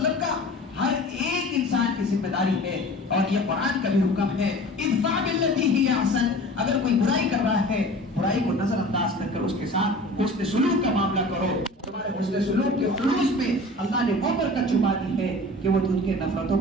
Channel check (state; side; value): normal; both; correlation 0.40